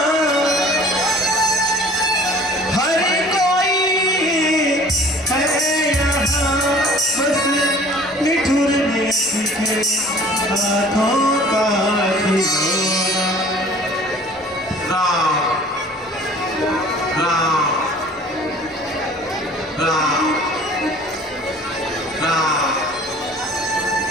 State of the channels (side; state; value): both; normal; correlation 0.49